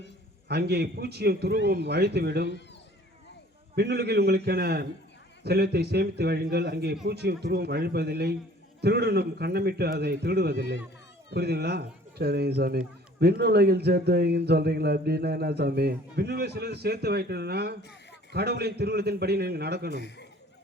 அங்கே பூச்சியும் துருவும் அழித்துவிடும். விண்ணுலகில் உங்களுக்கென செல்வத்தை சேமித்து வையுங்கள், அங்கே பூச்சியும் துருவும் அழிப்பதில்லை, திருடனும் கண்ணமிட்டு அதை திருடுவதில்லை. புரியுதுங்களா? சரிங்க சாமி. விண்ணுலகில் சேர்த்து வைங்கன்னு சொல்கிறீங்களா? அப்படின்னா என்ன சாமி? விண்ணுலகில் சிலது சேர்த்து வைக்கணும்னா கடவுளின் திருவுளத்தின்படி நீங்கள் நடக்கணும்.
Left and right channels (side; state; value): both; normal; correlation 0.52